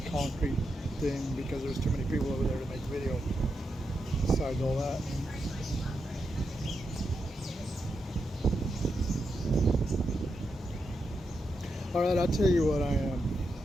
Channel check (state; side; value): normal; both; correlation 0.85